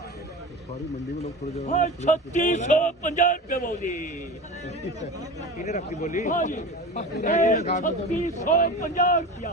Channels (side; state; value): both; normal; correlation 0.32